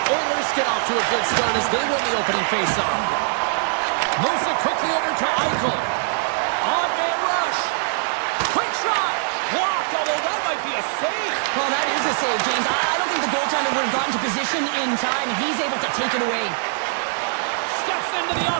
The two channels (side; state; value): left; silent; digital silence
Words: Oilers get off to a good start as they win the opening face-off. Moves it quickly over to Eichel. On-man rush. Quick shot. Blocked, although that might be a save. Well, that is a save, James. I don't think the goaltender would have gotten to position in time, and he's able to take it away. Steps into the